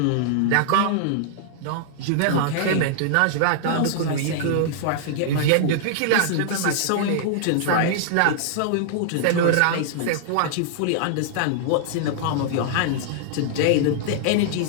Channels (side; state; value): both; different; correlation -0.01